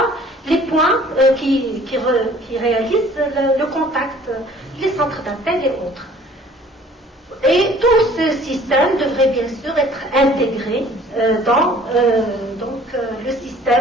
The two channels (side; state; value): both; normal; correlation 0.53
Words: les points qui réalisent le contact, les centres d'appel et autres. Et tout ce système devrait bien sûr être intégré dans le